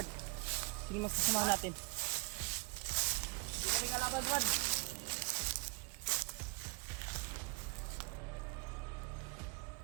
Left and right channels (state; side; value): quieter; left; 32.0 dB